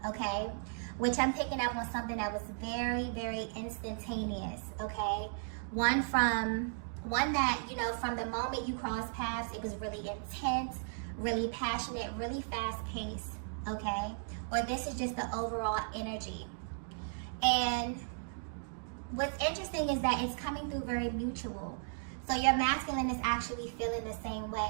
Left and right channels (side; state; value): left; silent; digital silence